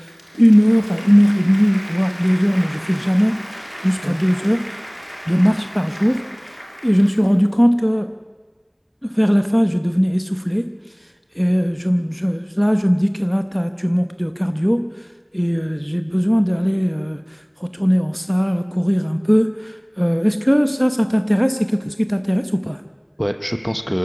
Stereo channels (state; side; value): identical; both; correlation 1.00